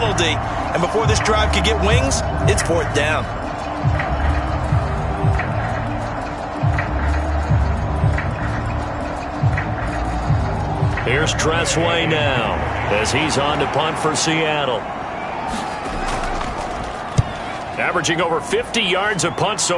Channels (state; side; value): identical; both; correlation 1.00